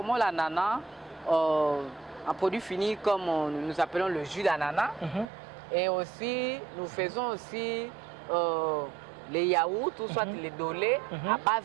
l'ananas en produit fini comme nous appelons le jus d'ananas. Et aussi, nous faisons aussi les yaourts ou soit les dolés à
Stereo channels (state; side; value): drops out; left; at 5.2 s